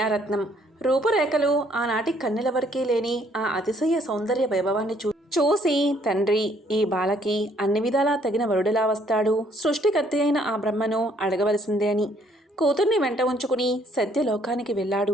రూపురేఖలు ఆనాటి కన్నెలవరికీ లేని ఆ అతిశయ సౌందర్య వైభవాన్ని చూసి తండ్రి ఈ బాలకి అన్ని విధాలా తగిన వరుడిలా వస్తాడు, సృష్టికర్త అయిన ఆ బ్రహ్మను అడగవలసిందే అని కూతుర్ని వెంట ఉంచుకుని సత్యలోకానికి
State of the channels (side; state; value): both; normal; correlation 0.65